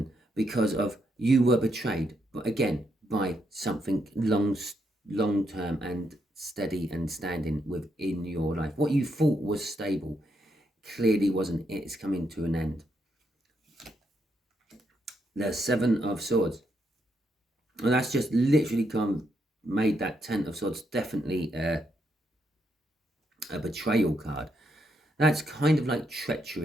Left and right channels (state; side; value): normal; both; correlation 0.79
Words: because of you were betrayed, but again, by something long-term and steady and standing within your life. What you thought was stable clearly wasn't. It's coming to an end. The 7 of Swords. And that's just literally made that 10 of Swords definitely a betrayal card. That's kind of like